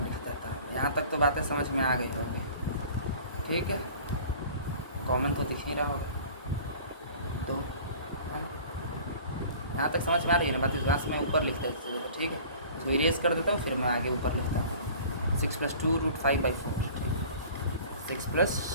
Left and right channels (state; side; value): inverted; both; correlation -0.45